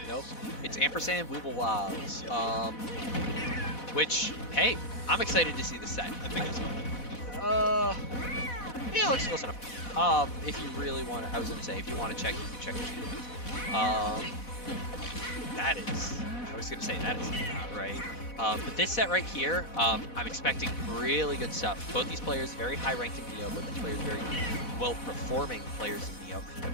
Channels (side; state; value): right; late; 4.1 ms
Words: is. Nope. It's Ampersand Weeblewobs. Yep. Which, hey, I'm excited to see the set. I think that's fine. Yeah, it looks close enough. If you really want to, I was gonna say, if you want to check, you can check the that is, I was gonna say that is not right. But this set right here, I'm expecting really good stuff. Both these players very high ranked in Neo, both these players very well performing players in Neo. And